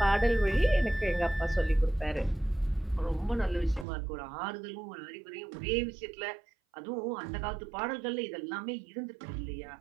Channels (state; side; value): drops out; left; at 3.9 s